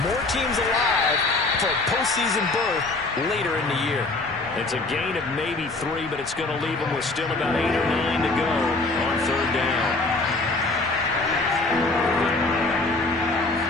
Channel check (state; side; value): quieter; right; 3.2 dB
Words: more teams alive for a postseason berth later in the year. It's a gain of maybe 3, but it's going to leave them with still about 8 or 9 to go on 3rd down.